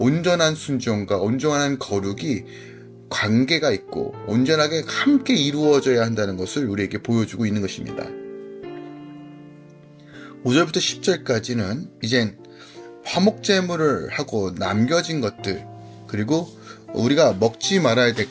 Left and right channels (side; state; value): both; identical; correlation 1.00